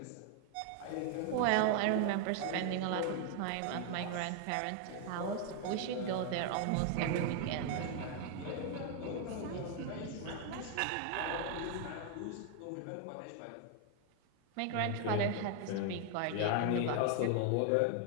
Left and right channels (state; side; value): different; both; correlation 0.00